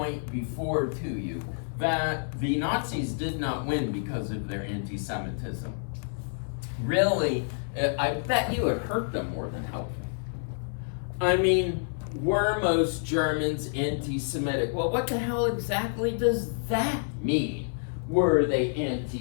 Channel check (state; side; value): silent; right; 59 dB below the other